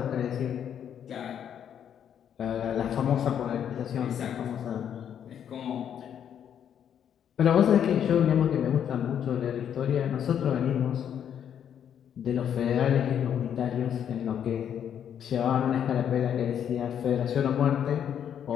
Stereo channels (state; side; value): quieter; right; 9.0 dB